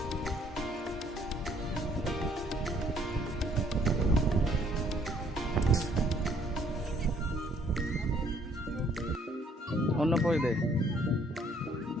অন্য পয়সা দে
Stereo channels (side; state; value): both; normal; correlation 0.64